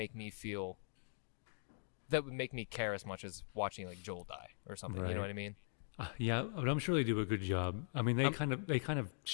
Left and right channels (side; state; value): right; silent; digital silence